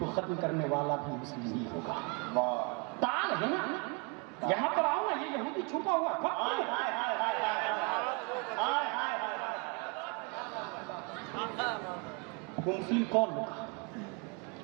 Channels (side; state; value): left; quieter; 31.8 dB